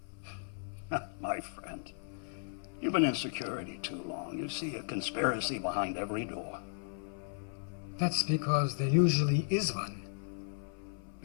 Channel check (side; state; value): right; silent; 54 dB below the other